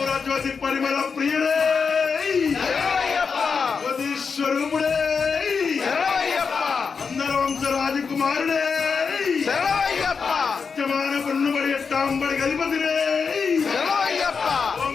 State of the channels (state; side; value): quieter; right; 5.5 dB